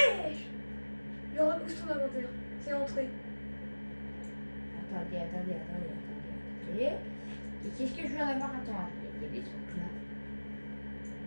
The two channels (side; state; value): both; inverted; correlation -1.00